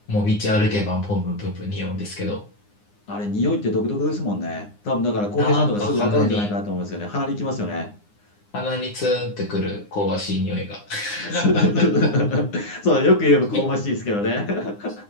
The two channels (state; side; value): late; right; 9.8 ms